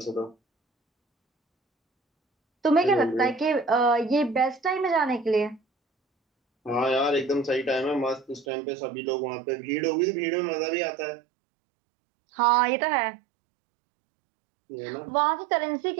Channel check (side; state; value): left; drops out; at 8.5 s